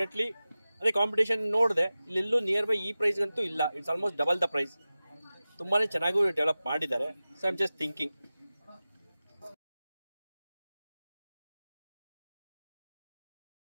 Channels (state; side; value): inverted; both; correlation -0.96